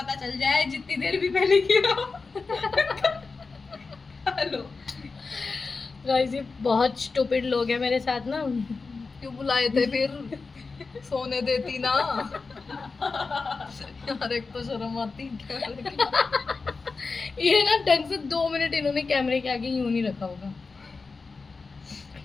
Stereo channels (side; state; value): right; quieter; 4.3 dB